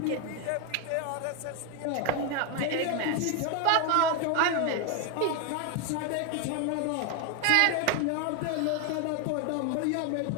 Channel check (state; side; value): different; both; correlation 0.01